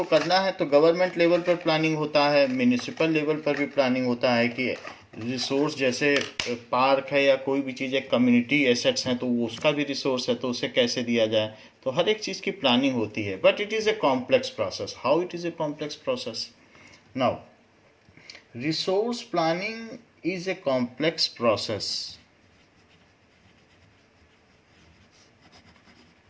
करना है, तो गवर्नमेंट लेवल पर प्लानिंग होता है, म्यूनिसिपल लेवल पर भी प्लानिंग होता है कि रिसोर्स जैसे पार्क है या कोई भी चीज़ है, कम्युनिटी एसेट्स हैं, तो वो उसका भी रिसोर्स है, तो उसे कैसे दिया जाए, तो हर एक चीज़ की प्लानिंग होती है। But it is a complex process. How it is a complex process? Now resource planning is a complex process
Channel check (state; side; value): identical; both; correlation 1.00